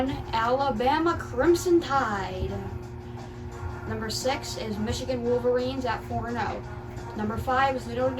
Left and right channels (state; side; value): identical; both; correlation 1.00